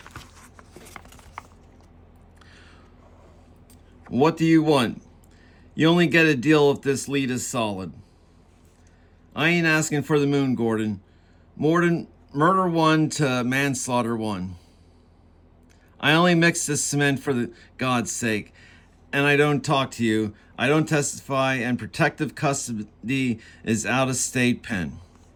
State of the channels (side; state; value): both; identical; correlation 1.00